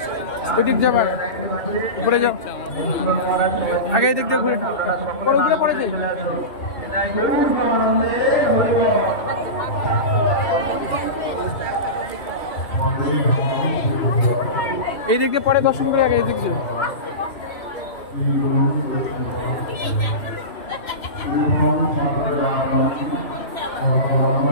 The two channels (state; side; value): late; right; 2.7 ms